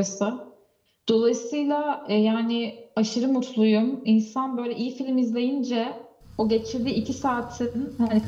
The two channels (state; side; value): identical; both; correlation 1.00